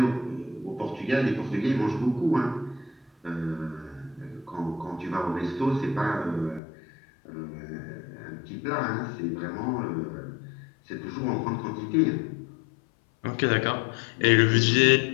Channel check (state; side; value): drops out; right; at 6.6 s